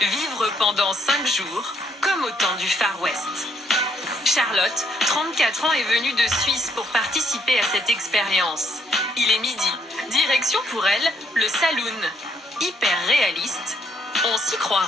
pendant 5 jours, comme au temps du Far West. Charlotte, 34 ans, est venue de Suisse pour participer à cette expérience. Il est midi. Direction pour elle, le saloon. Hyper réaliste. On s'y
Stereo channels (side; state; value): both; normal; correlation 0.70